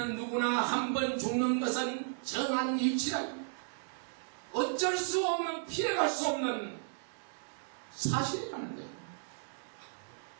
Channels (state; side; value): silent; left; 55 dB below the other